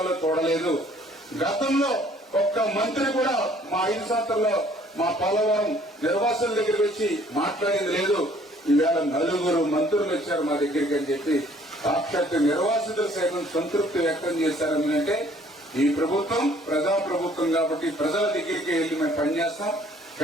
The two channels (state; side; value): normal; both; correlation 0.58